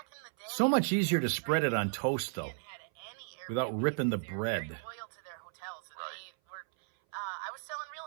in the day, So much easier to spread it on toast, though, without ripping the bread. Very loyal to their hotels. And they were, I was selling real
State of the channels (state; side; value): silent; left; 55 dB below the other